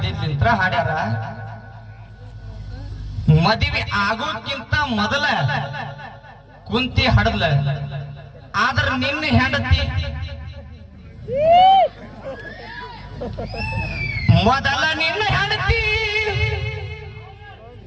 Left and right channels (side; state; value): both; identical; correlation 1.00